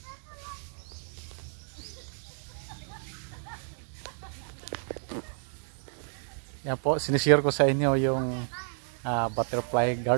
Yan po, sinishare ko sa inyo yung butterfly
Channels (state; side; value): silent; left; 57 dB below the other